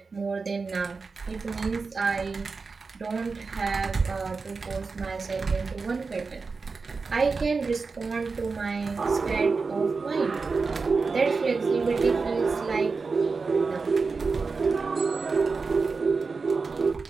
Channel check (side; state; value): left; quieter; 4.5 dB